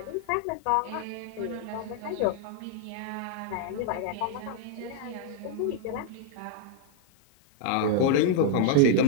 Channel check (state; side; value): different; both; correlation 0.00